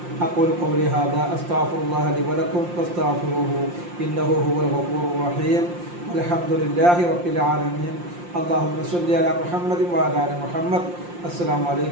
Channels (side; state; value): left; late; 5.7 ms